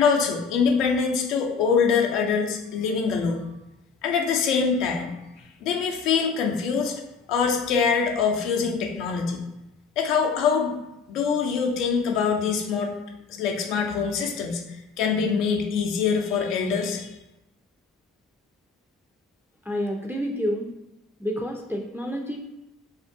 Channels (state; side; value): quieter; right; 5.2 dB